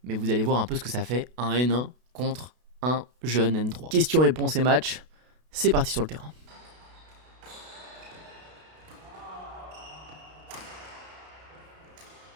mais vous allez voir un peu ce que ça fait un N1 contre un jeune N3. Questions-réponses et match, c'est parti sur le terrain.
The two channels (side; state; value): left; late; 32 ms